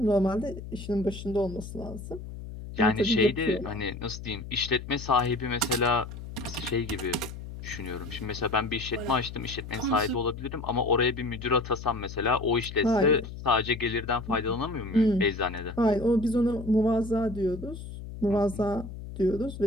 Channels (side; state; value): left; noise; hum, 11 dB below the sound